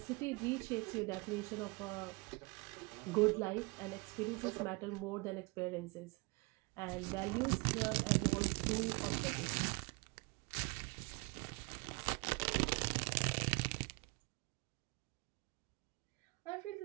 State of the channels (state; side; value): quieter; left; 28.1 dB